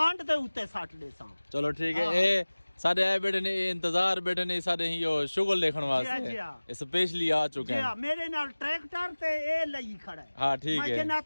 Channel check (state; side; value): inverted; both; correlation -1.00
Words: ते उते साट दे सा चलो ठीक है ए सारे आए बेटे ने इंतजार बेटे ने सारे ही यो शुगर देखण वास्ते स्पेशली आ चुके हैं मेरे नाल ट्रैक्टर ते ए लई खड़ा है हां ठीक है मैं